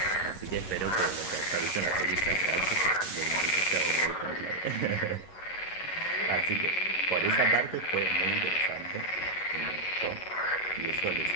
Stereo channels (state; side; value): late; right; 11 ms